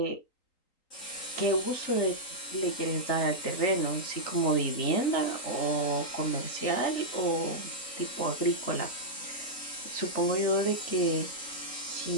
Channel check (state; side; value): late; right; 3.8 ms